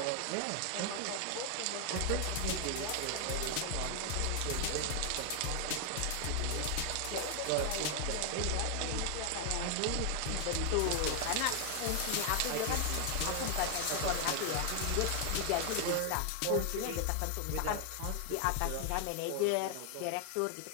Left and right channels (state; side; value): different; both; correlation 0.00